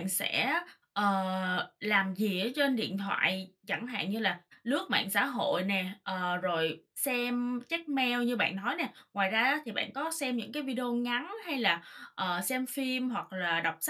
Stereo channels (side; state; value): both; identical; correlation 1.00